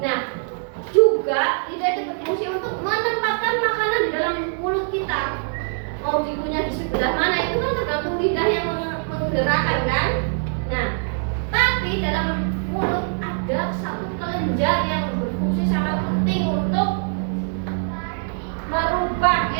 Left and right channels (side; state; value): left; silent; 64 dB below the other